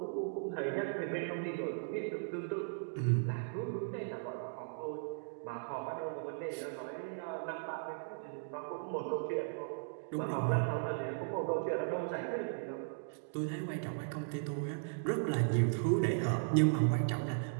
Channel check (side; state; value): left; silent; digital silence